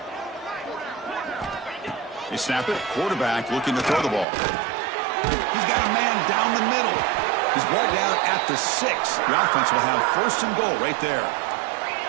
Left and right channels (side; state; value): left; drops out; at 4.2 s